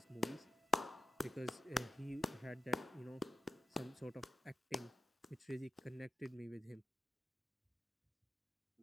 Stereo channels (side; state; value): both; normal; correlation 0.89